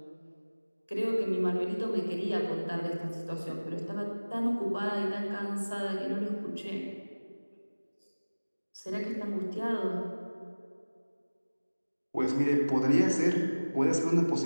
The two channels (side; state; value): both; inverted; correlation -1.00